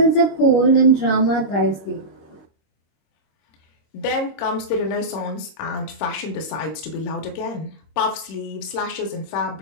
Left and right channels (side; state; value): right; late; 26 ms